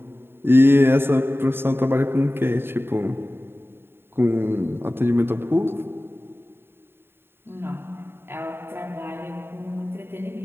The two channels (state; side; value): late; left; 0.11 ms